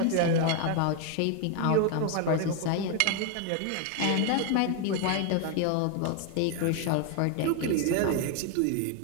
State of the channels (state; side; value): different; both; correlation 0.01